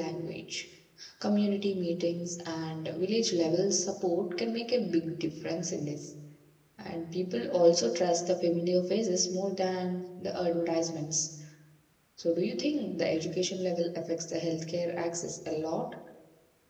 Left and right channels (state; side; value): identical; both; correlation 1.00